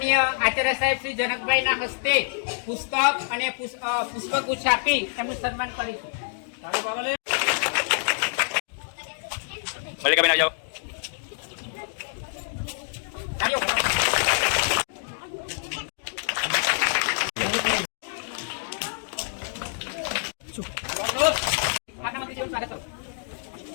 આચાર્ય સાહેબ શ્રી જનકભાઈના હસ્તે પુસ્તક અને પુષ્પગુચ્છ આપી એમનું સન્માન કરીશું. મલ્લિકાબેન આવી જાઓ.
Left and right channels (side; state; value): right; silent; digital silence